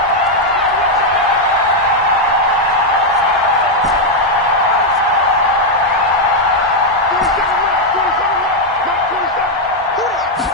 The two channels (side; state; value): both; normal; correlation 0.00